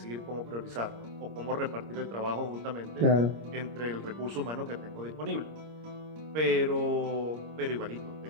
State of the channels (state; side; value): late; left; 26 ms